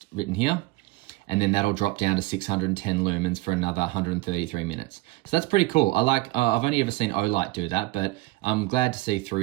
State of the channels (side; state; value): left; quieter; 20.1 dB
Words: written here. And then that'll drop down to 610 lumens for another 133 minutes. So that's pretty cool. I like, I've only ever seen Olight do that, but I'm glad to see